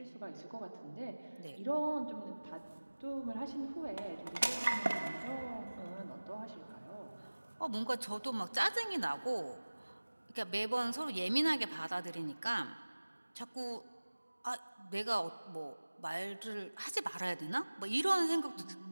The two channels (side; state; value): both; inverted; correlation -1.00